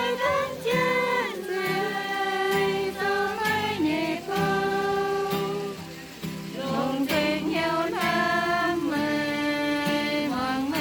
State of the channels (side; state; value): both; identical; correlation 1.00